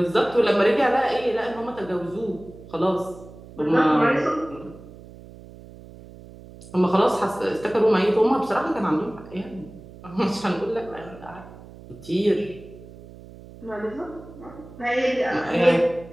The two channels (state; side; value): noise; right; hum, 18 dB below the sound